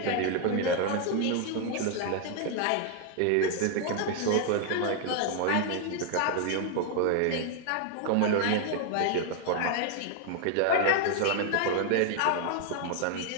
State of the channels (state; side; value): different; both; correlation 0.00